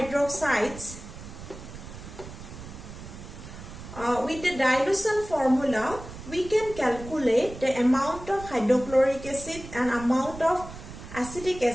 with the dilution formula, we can calculate the amount of hydrochloric acid and amount of acetic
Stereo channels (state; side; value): noise; right; rumble, 13 dB below the sound